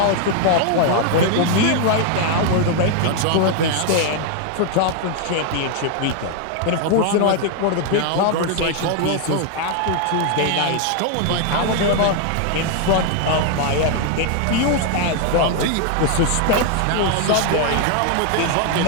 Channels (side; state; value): both; different; correlation 0.00